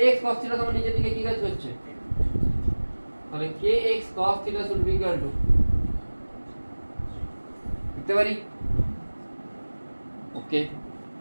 cos theta তোমার নিচের দিকে কি কাজ করছে, তাহলে kx cos theta should be equal to লিখতে পারি, ওকে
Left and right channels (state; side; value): inverted; both; correlation -1.00